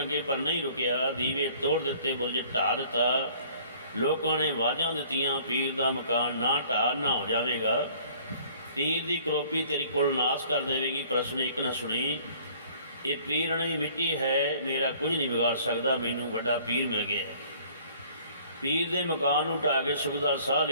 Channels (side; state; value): both; inverted; correlation -0.54